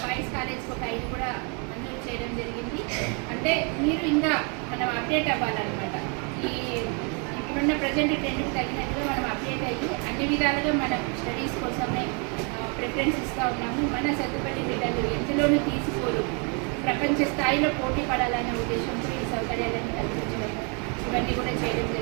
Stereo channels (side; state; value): left; quieter; 35.7 dB